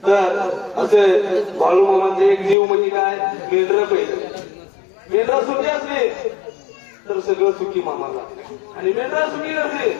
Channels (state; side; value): drops out; right; at 2.6 s